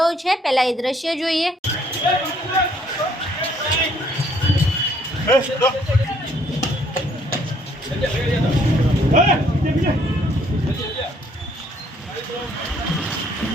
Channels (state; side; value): normal; both; correlation 0.65